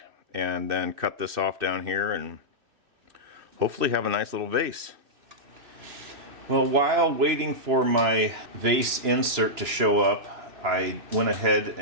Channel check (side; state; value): left; late; 2.9 ms